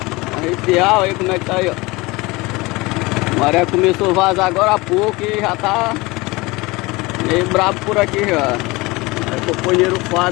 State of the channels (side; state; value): right; quieter; 22.9 dB